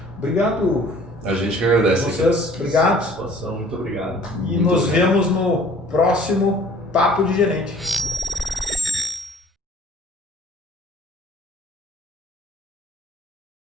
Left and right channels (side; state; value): both; normal; correlation 0.52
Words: Obrigado. A gente que agradece. Vocês, obrigado. Satisfação, muito obrigado. E nos vemos no próximo Papo de Gerente.